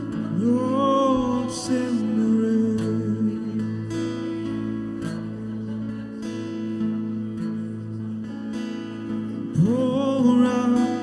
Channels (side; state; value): both; identical; correlation 1.00